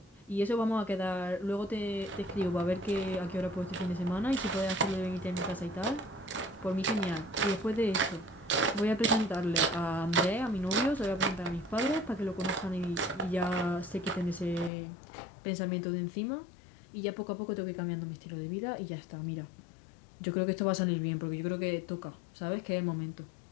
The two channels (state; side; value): drops out; right; at 14.7 s